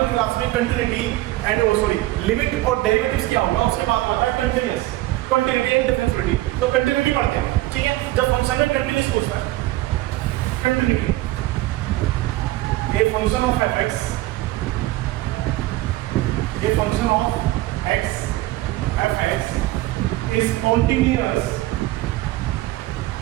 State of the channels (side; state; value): left; quieter; 17.4 dB